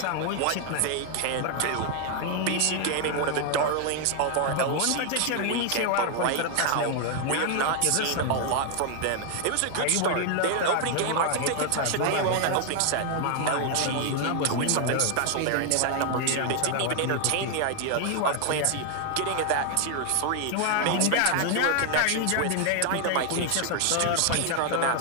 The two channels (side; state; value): both; different; correlation 0.00